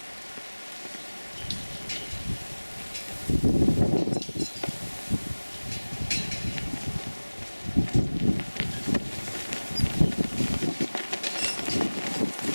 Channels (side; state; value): both; inverted; correlation -1.00